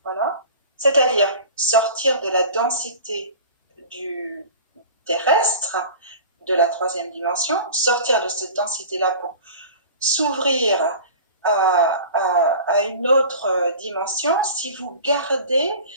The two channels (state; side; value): inverted; both; correlation -0.39